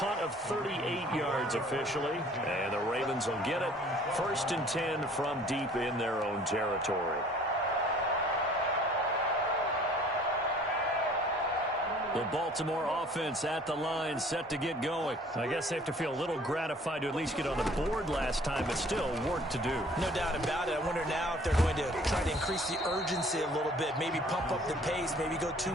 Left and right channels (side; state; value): both; normal; correlation 0.53